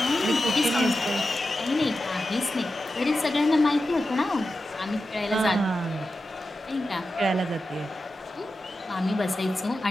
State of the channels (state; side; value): normal; both; correlation 0.91